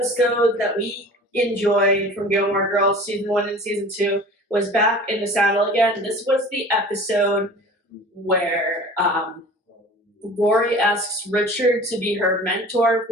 that we enjoyed from Gilmore Girls season 1 and season 2 was Back in the Saddle Again. This was the episode where Rory asks Richard to be her mentor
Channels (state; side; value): normal; both; correlation 0.42